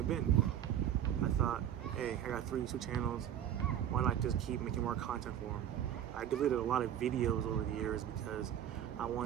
been. I thought, hey, I got 3 YouTube channels, why not just keep making more content for them? I deleted a lot of videos over the years because I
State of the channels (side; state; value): left; quieter; 10.4 dB